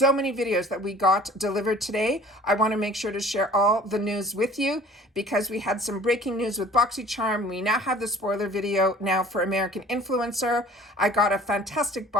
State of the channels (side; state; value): both; normal; correlation 0.49